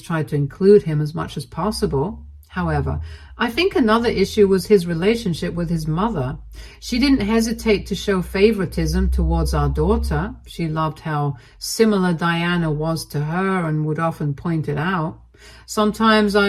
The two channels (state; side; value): identical; both; correlation 1.00